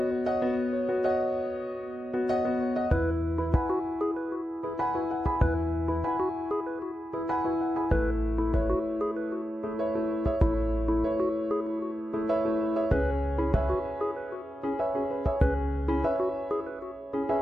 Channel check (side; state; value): both; normal; correlation 0.90